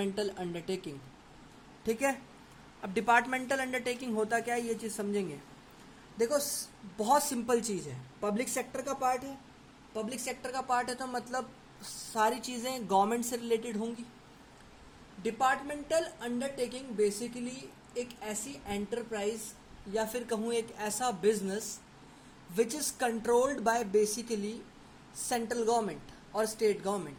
undertaking. ठीक है। अब डिपार्टमेंटल अंडरटेकिंग होता क्या है ये चीज़ समझेंगे। देखो बहुत सिंपल चीज़ है, पब्लिक सेक्टर का पार्ट है, पब्लिक सेक्टर का पार्ट है तो मतलब सारी चीज़ें गवर्नमेंट से रिलेटेड होंगी। डिपार्टमेंटल अंडरटेकिंग बेसिकली एक ऐसी एंटरप्राइज या फिर कहूँ एक ऐसा business which is controlled by basically central government और स्टेट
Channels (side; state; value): both; identical; correlation 1.00